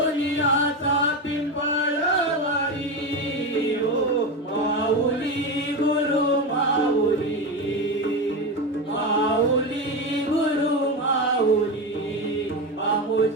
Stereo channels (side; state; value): both; normal; correlation 0.18